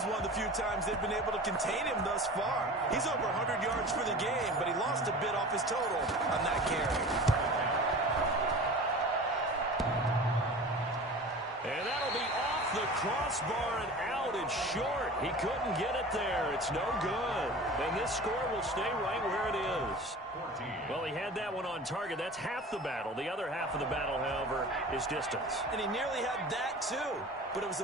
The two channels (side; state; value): both; normal; correlation 0.37